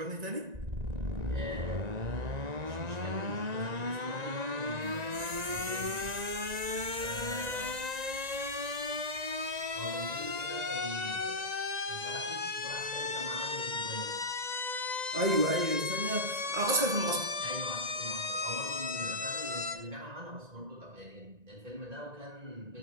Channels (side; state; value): left; late; 1.9 ms